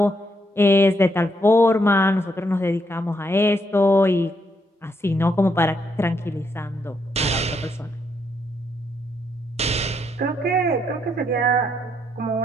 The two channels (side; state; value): both; normal; correlation 0.76